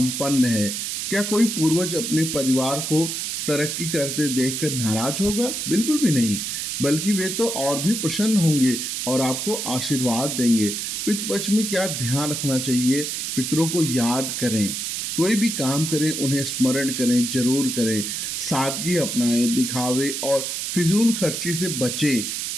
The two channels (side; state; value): right; noise; hiss, 3 dB below the sound